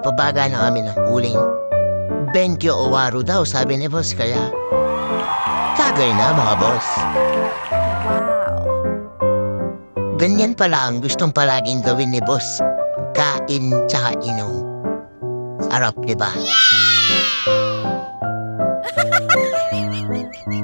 na kami ng uling. Benkyo o waro daw, sabi ni boss, kaya tagay na mga boss. Wow. Ganyan pala ang gustong palaging gawin ni boss. Kain tsaka inom. Sarap, diba?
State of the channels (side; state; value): both; inverted; correlation -1.00